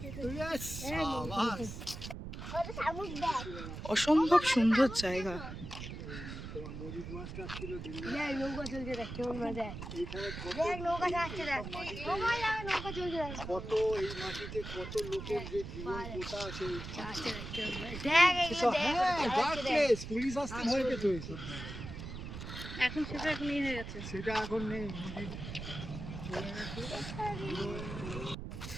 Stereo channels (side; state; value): right; noise; rumble, 8 dB below the sound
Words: Yes, সাবাস। ওটা শামুক দেখ। অসম্ভব সুন্দর জায়গা। দেখ নৌকা চলছে, দেখ কেমন মজা। দেখ নৌকা যাচ্ছে, দেখ নৌকা যাবে, নৌকা চলছে, দেখ কত এই মাটিতে কত লোকের যে জীবন পোতা আছে। দেখ এইগুলো দেখ। হ্যাঁ, dark place, পুলিশ আসতে ভয় পেত এইসব। এখন সেটা এখন ইয়ে হয়ে গেছে। সেটা এখন নেই, নদীর চলে গেছে।